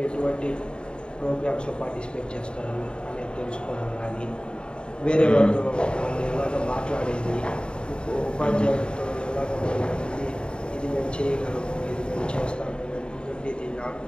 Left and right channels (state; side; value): late; right; 0.051 ms